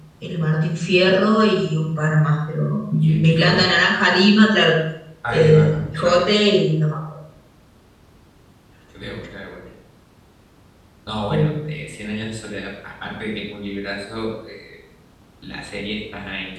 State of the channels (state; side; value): identical; both; correlation 1.00